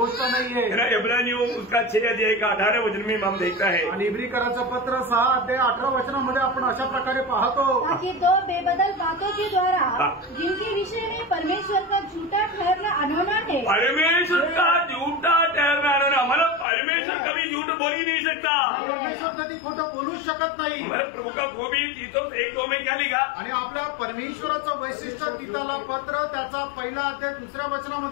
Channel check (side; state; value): right; drops out; at 16.7 s